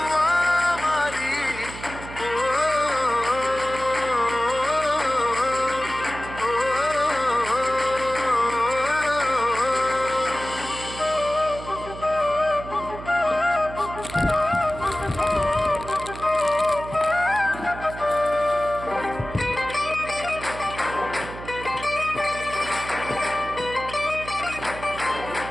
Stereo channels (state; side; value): noise; right; hum, 12 dB below the sound